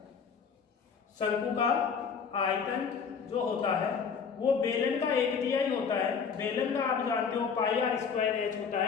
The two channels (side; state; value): right; quieter; 6.2 dB